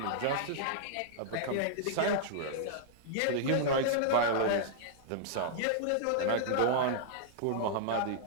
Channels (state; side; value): different; both; correlation -0.02